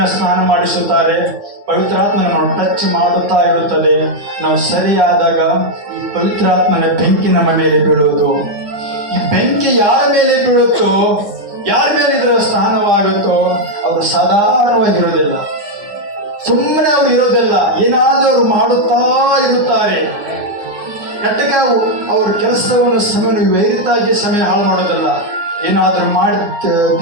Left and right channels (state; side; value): late; left; 9.8 ms